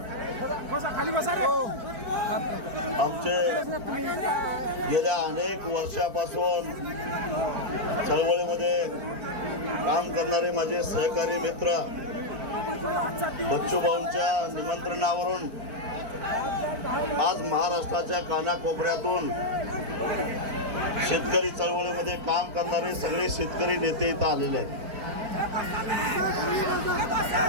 आमचे गेल्या अनेक वर्षापासून चळवळीमध्ये काम करणारे माझे सहकारी मित्र बच्चू भाऊंच्या निमंत्रणावरून आज महाराष्ट्राच्या कानाकोपऱ्यातून शेतकरी चळवळीमध्ये काम करणारे सगळे शेतकरी नेते इथं आलेले आहेत.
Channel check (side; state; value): left; late; 4.5 ms